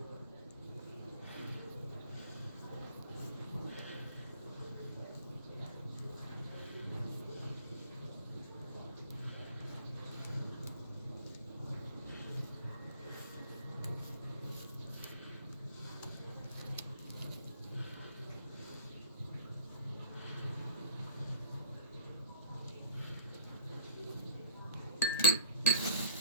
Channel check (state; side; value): inverted; both; correlation -0.44